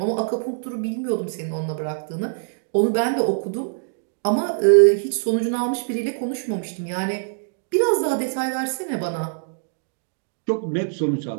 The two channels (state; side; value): silent; left; digital silence